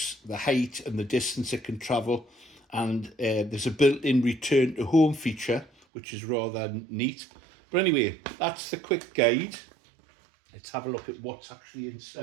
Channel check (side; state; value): left; drops out; at 5.7 s